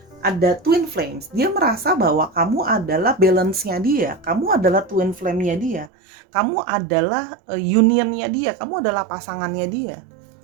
Ada twin flames. Dia merasa bahwa kamu adalah balance-nya dia, kamu adalah twin flame-nya dia, kamu adalah union-nya dia, kamu adalah pasangannya dia.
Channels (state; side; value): drops out; left; at 5.9 s